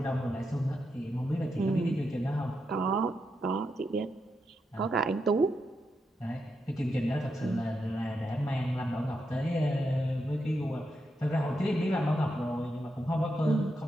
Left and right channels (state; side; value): normal; both; correlation 0.84